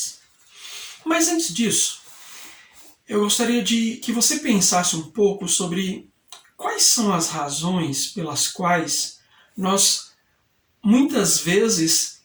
Mas antes disso, eu gostaria de que você pensasse um pouco sobre quais são as razões pelas quais nós muitas vezes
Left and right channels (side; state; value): both; identical; correlation 1.00